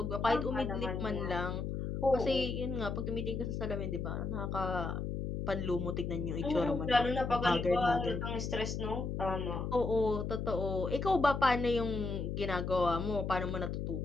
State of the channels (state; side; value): noise; left; hum, 3 dB below the sound